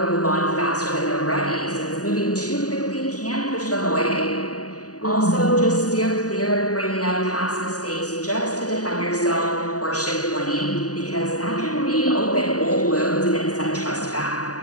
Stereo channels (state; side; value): late; right; 0.67 ms